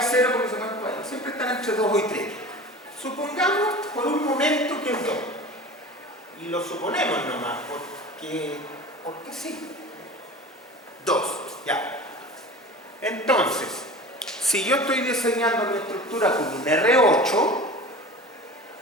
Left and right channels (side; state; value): both; normal; correlation 0.36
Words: 0, porque siempre están entre 2 y 3. Supongamos por un momento que es 2. Y lo suponemos nomás, porque sí. 2, ya. Entonces, si yo estoy diseñando mi estructura con un R8,